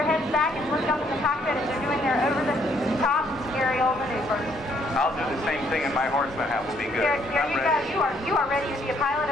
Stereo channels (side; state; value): both; normal; correlation 0.68